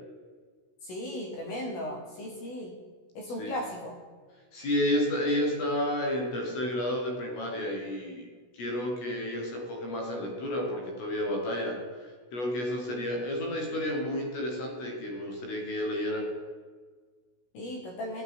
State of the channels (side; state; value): right; late; 16 ms